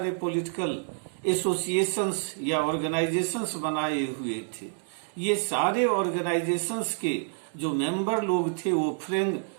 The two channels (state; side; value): silent; left; 59 dB below the other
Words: पॉलिटिकल एसोसिएशंस या ऑर्गेनाइजेशंस बनाए हुए थे। ये सारे ऑर्गेनाइजेशंस के जो मेंबर लोग थे वो